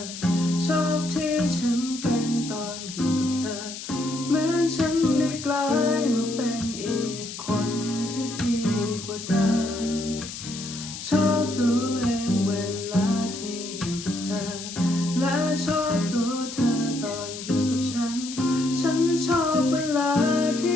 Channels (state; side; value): noise; left; hiss, 10 dB below the sound